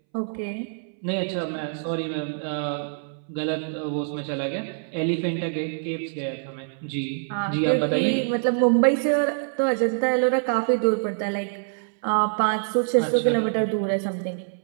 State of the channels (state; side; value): silent; left; 62 dB below the other